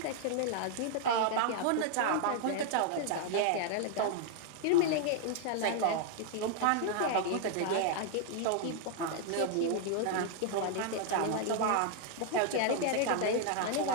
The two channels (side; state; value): both; different; correlation 0.00